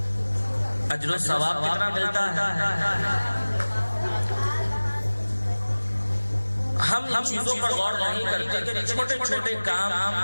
اجر و ثواب کتنا ملتا ہے؟ ہم ان چیزوں پر غور نہیں کرتے کہ چھوٹے چھوٹے کام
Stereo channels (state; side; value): inverted; both; correlation -1.00